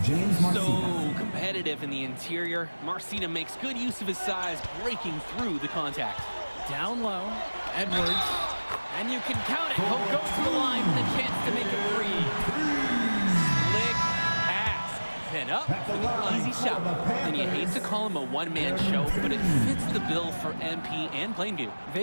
So competitive in the interior. Marcita makes good use of his size, breaking through the contact. Down low, Edwards. And you can count it. He'll go to the line with a chance to make it free. Slick pass. Then up for the easy shot. And you hate to call him a one-man show, but it fits the bill for MP and Plainview.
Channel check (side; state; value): both; inverted; correlation -1.00